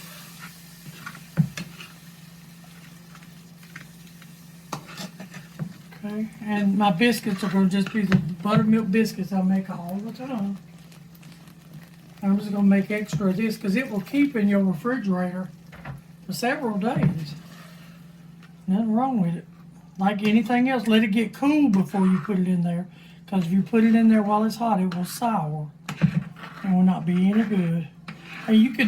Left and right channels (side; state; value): both; identical; correlation 1.00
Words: okay, and my biscuits are going to just be the buttermilk biscuits I make all the time. I'm just going to make extra of this because it will keep in your refrigerator for several days. Nothing wrong with it. Like anything else, let it get cool before you put it in there. Because if you put it in there while it's hot, it will sour. And will not be any good. And you